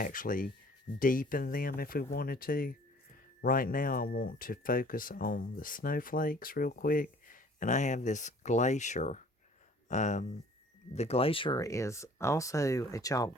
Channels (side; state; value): both; normal; correlation 0.52